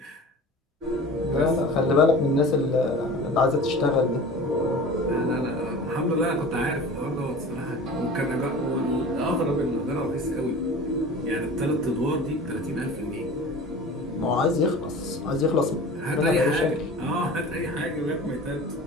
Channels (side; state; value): both; normal; correlation 0.38